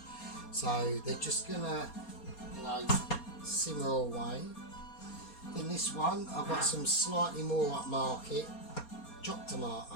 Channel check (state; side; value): late; right; 4.2 ms